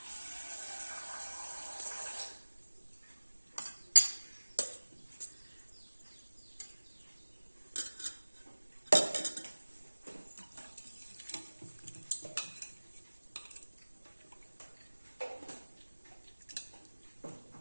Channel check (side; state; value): both; inverted; correlation -1.00